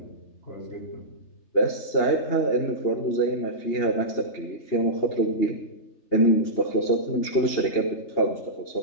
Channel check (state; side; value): late; right; 3.3 ms